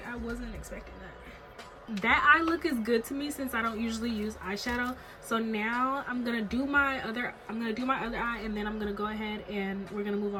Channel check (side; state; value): both; identical; correlation 1.00